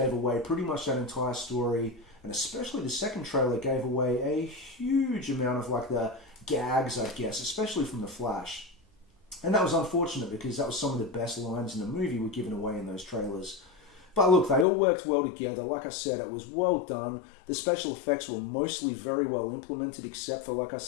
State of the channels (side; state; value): right; drops out; at 14.7 s